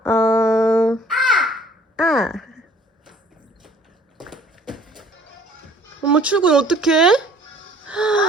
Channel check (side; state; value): both; normal; correlation 0.55